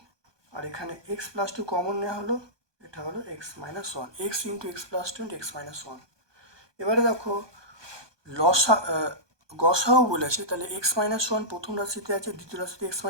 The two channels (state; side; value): late; left; 1.2 ms